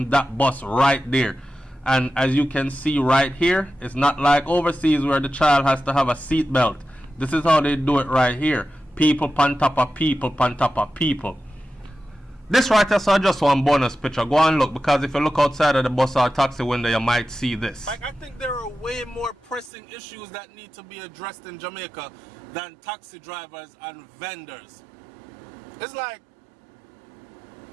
that bus right there. And as you can see right here, it's not like overseas where the child has to have a seat belt. This is how they do it right here. People on top of people on top of people. This right here is just one bonus picture. Go and look, because if you look outside of the bus or taxi window, you might see this. Like, I think there are way more pressing issues that need to be addressed in Jamaica than taxi drivers and vendors. It's like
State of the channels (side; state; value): left; drops out; at 19.7 s